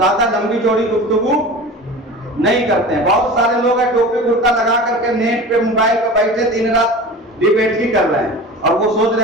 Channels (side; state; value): both; normal; correlation 0.35